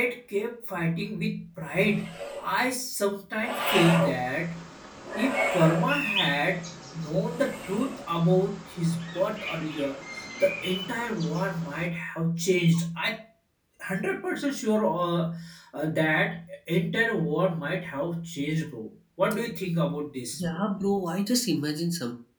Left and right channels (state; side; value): identical; both; correlation 1.00